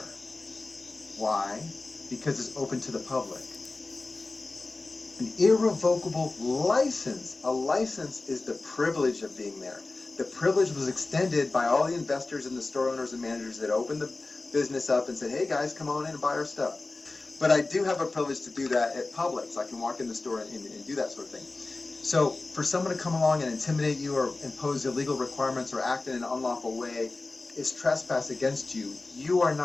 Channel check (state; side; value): quieter; right; 3.4 dB